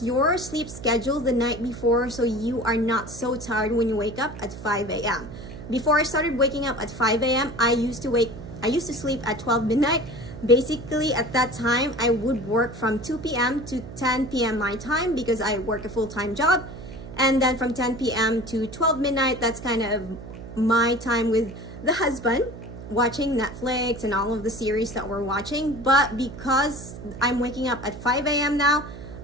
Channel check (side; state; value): right; noise; hum, 13 dB below the sound